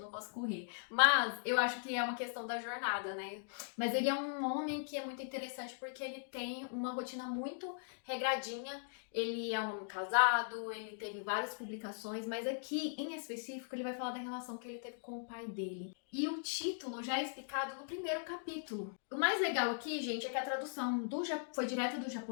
posso correr. Mas eu acho que é uma questão da jornada, né? Mas ele é um homem que é muito interessante porque ele tem uma rotina muito regradinha. Ele é um homem casado, ele teve várias publicações, mas aqui, em específico, ele vai falar da relação que ele teve com o pai dele. E o título já é explicado no primeiro capítulo. O mais legal aqui, gente, é que a tradução foi direta do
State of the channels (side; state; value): right; silent; digital silence